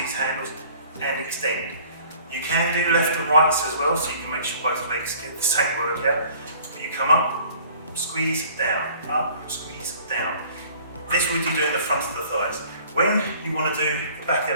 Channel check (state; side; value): inverted; both; correlation -0.52